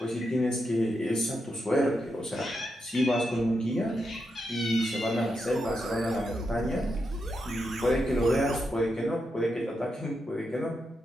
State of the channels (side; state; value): both; normal; correlation 0.85